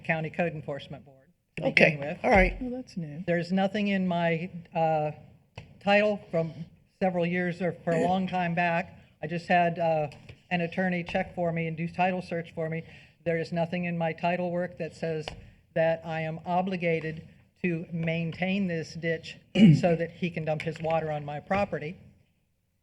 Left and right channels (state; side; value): identical; both; correlation 1.00